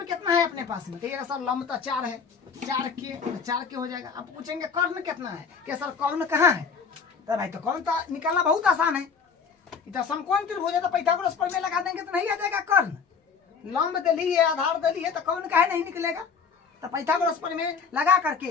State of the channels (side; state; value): right; quieter; 5.8 dB